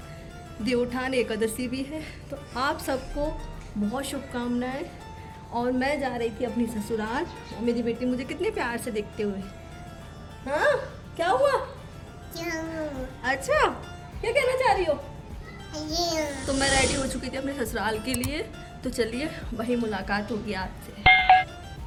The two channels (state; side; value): identical; both; correlation 1.00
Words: देवउठान एकादशी भी है, तो आप सबको बहुत शुभकामनाएं। और मैं जा रही थी अपनी ससुराल, मेरी बेटी मुझे कितने प्यार से देखते हुए। हाँ, क्या हुआ? अच्छा, क्या कहना चाह रही हो? तो मैं रेडी हो चुकी थी अपने ससुराल के लिए, तो चलिए वही मुलाकात होगी आपसे।